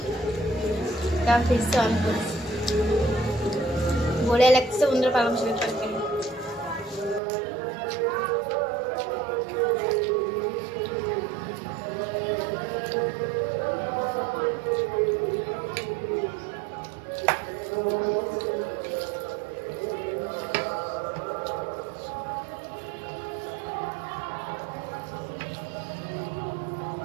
তা ফিরছে অন করছি। বলে লাগছে বন্ধুরা পালং শাকের তরকারি।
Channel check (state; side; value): drops out; left; at 7.2 s